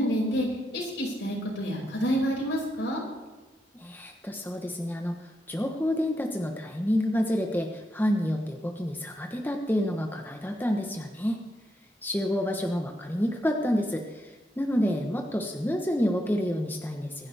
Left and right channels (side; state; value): both; normal; correlation 0.82